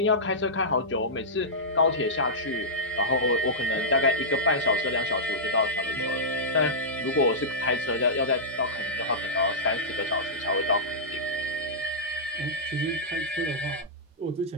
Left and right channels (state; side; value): normal; both; correlation -0.13